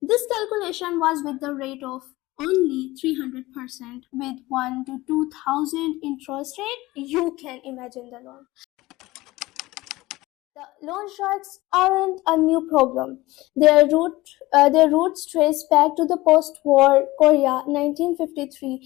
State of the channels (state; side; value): quieter; right; 19.3 dB